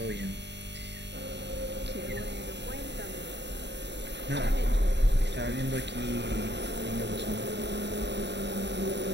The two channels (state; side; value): late; left; 0.51 ms